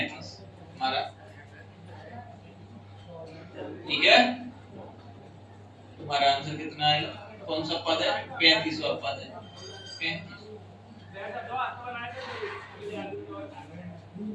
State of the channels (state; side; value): identical; both; correlation 1.00